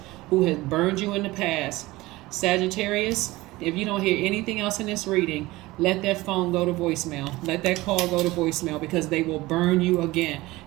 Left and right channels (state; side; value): quieter; left; 19.6 dB